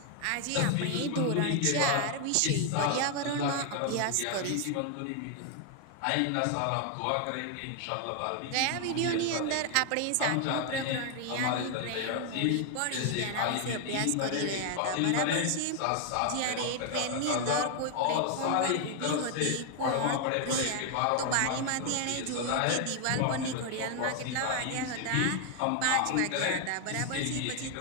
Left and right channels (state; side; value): different; both; correlation 0.00